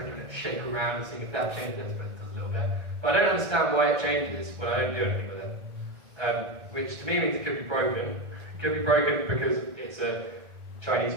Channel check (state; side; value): late; left; 1.3 ms